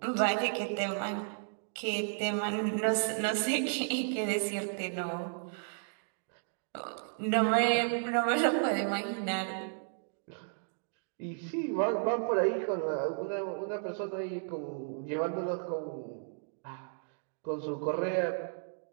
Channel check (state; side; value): silent; left; digital silence